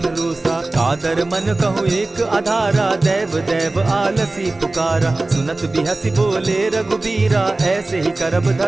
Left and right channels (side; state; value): left; quieter; 3.1 dB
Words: रोसा। कादर मन कहूँ एक आधारा, दैव दैव आलसी पुकारा। सुनत बिहसी बोले रघुबीरा, ऐसे ही करब